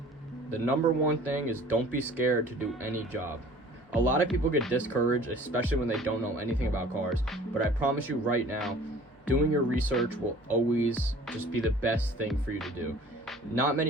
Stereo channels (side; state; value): both; normal; correlation 0.48